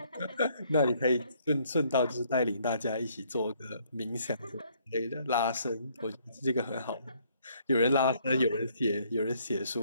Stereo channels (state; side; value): inverted; both; correlation -0.66